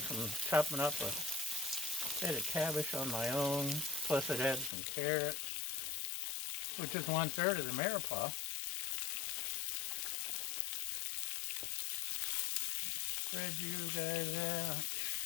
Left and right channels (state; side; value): drops out; right; at 4.7 s